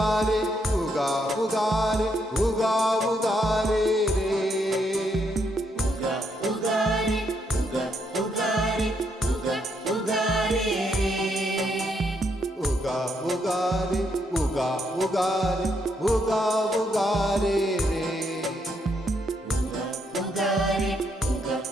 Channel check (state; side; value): normal; both; correlation 0.76